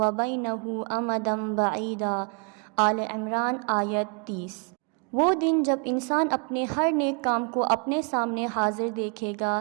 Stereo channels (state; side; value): quieter; left; 37.5 dB